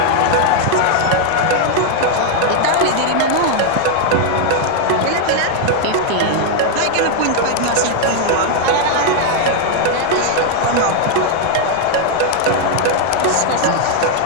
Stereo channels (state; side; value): different; both; correlation 0.00